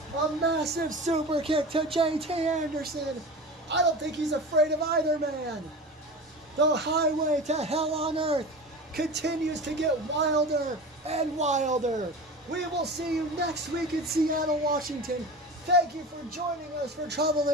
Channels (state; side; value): normal; both; correlation 0.32